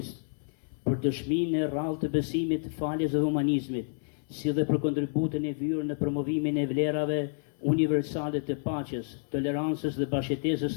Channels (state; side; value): silent; right; 58 dB below the other